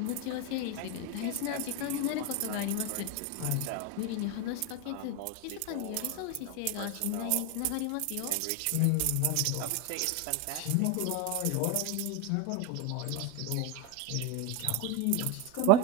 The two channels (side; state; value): both; different; correlation 0.02